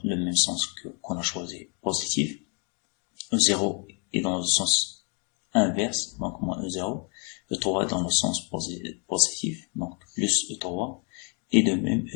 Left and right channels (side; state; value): right; quieter; 36.2 dB